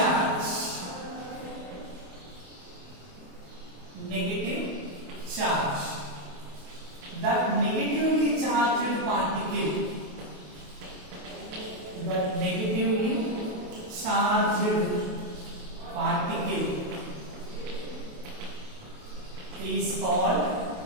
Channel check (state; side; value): late; left; 28 ms